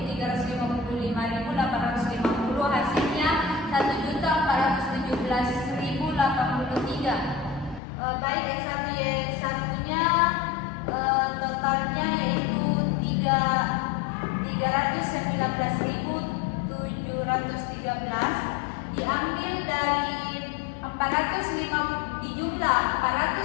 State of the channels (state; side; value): drops out; right; at 7.8 s